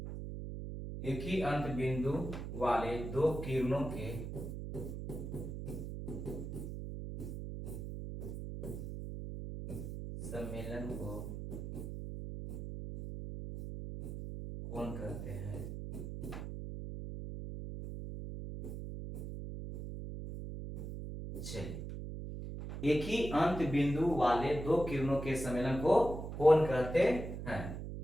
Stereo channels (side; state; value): right; noise; hum, 7 dB below the sound